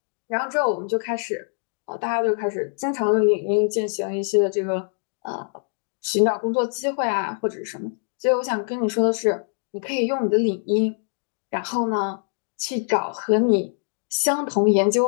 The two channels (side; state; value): right; silent; digital silence